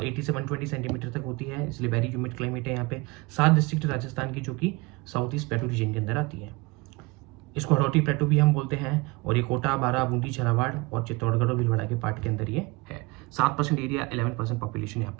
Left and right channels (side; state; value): left; quieter; 24.8 dB